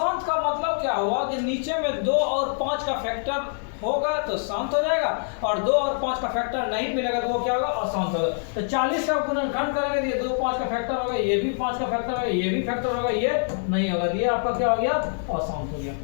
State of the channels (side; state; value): right; silent; digital silence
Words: का मतलब क्या हुआ कि नीचे में 2 और 5 का फैक्टर होगा तो शांत हो जाएगा, और 2 और 5 का फैक्टर नहीं मिलेगा तो वो क्या होगा अशांत होगा। तो 40 का गुणनखंड करेंगे तो ये 2 5 का फैक्टर होगा, ये भी 5 का फैक्टर होगा, ये भी फैक्टर होगा, ये नहीं होगा, ये आपका क्या हो गया अशांत हो गया।